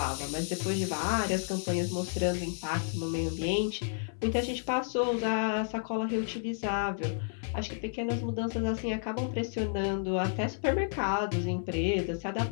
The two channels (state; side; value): silent; right; 57 dB below the other